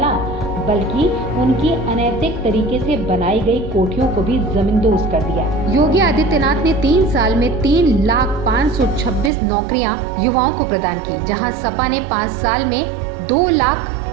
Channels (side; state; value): left; drops out; at 9.3 s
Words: बल्कि उनकी अनैतिक तरीके से बनाई गई कोठियों को भी जमींदोज कर दिया। योगी आदित्यनाथ ने 3 साल में 3,526 नौकरियां युवाओं को प्रदान की, जहां सपा ने 5 साल में